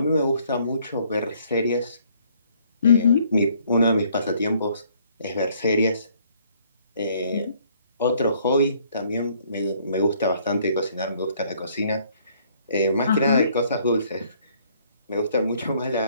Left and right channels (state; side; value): inverted; both; correlation -0.64